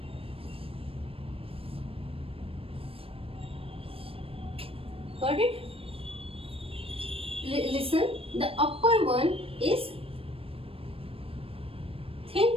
got it? Listen, the upper one is thin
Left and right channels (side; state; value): left; late; 0.27 ms